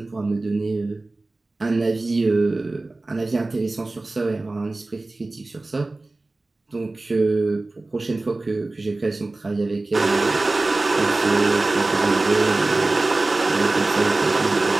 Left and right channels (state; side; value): quieter; left; 3.1 dB